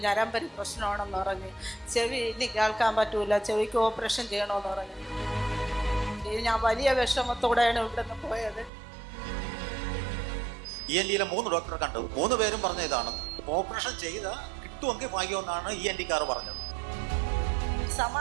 ഞരമ്പരി പ്രശ്നമാണെന്ന് പറഞ്ഞ്, ചെവി ഇനി കേൾക്കാൻ പറ്റൂല, ചെവിക്ക് ഓപ്പറേഷൻ ചെയ്യണമെന്ന് പറഞ്ഞു. ഞാൻ വലിയ വിഷമത്തോടെയാണ് ഇവിടെ നിന്ന് പോയത്. ENTയിലെ 3 ഡോക്ടറെ കണ്ടു. 3 പേരും പറഞ്ഞ ഇതാണ്, ഓപ്പറേഷൻ ചെയ്ത കിട്ടുമെങ്കിൽ ഭാഗ്യമെന്നാണ് ENTക്കാർ പറഞ്ഞത്.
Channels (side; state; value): left; drops out; at 8.7 s